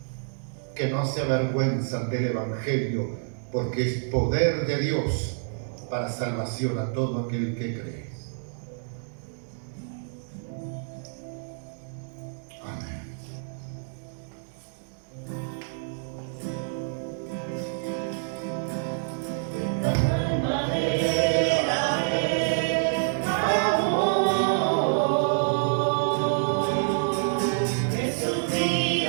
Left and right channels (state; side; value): silent; left; digital silence